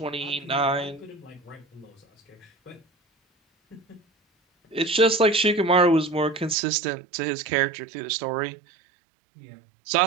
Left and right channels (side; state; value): left; drops out; at 6.6 s